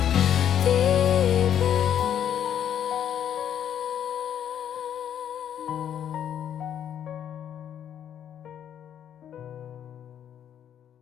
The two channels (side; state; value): right; quieter; 9.6 dB